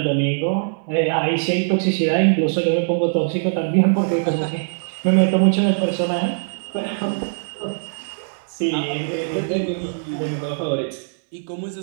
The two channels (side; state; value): left; silent; digital silence